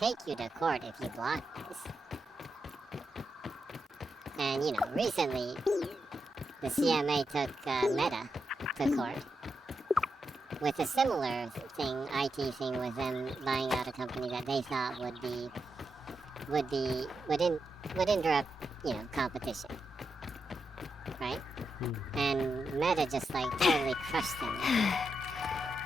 you to court if you block this. And, recently, the CMA took Meta to court with a similar thing, IT thing, with them buying out a company that they thought would interrupt, competition, right? And Meta just totally crushed them.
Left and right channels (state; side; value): normal; both; correlation 0.86